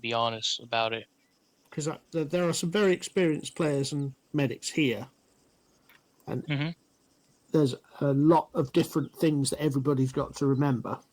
honest about it. Because there are some very experienced players and medics here, and there's a lot of different things that everybody's got to remember.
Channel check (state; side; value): identical; both; correlation 1.00